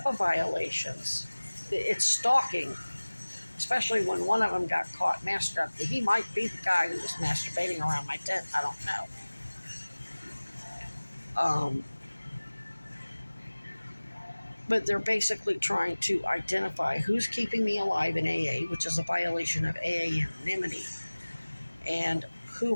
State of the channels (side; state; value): both; inverted; correlation -1.00